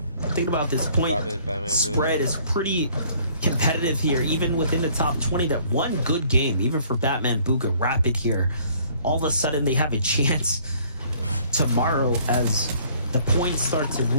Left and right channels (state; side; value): inverted; both; correlation -0.59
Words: Think about this point spread is pretty competitive here, even within the top 20. That one good game, even for Batman Booga Rapid here, all of a sudden they have a chance tomorrow as the points start to